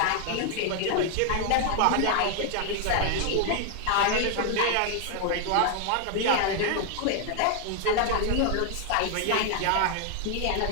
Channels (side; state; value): both; different; correlation 0.00